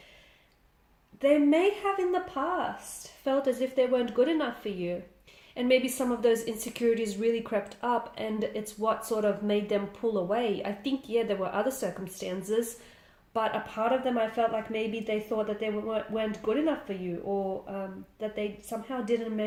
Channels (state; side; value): identical; both; correlation 1.00